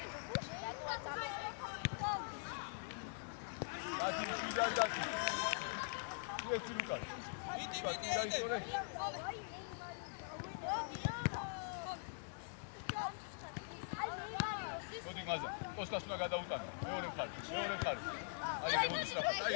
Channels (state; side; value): silent; right; digital silence